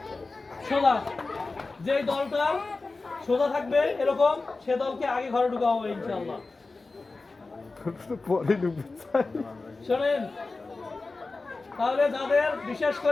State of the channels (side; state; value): right; quieter; 3.6 dB